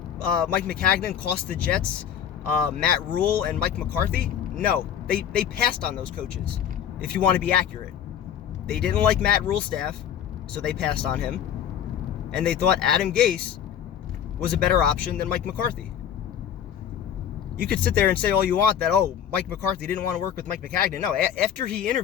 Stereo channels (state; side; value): quieter; right; 9.2 dB